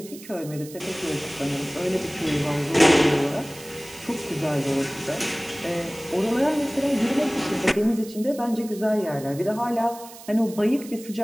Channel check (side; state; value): right; noise; hiss, 17 dB below the sound